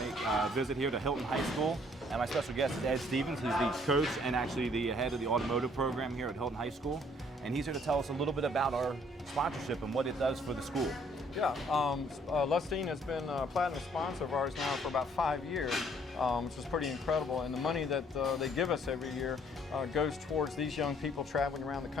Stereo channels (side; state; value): both; normal; correlation 0.62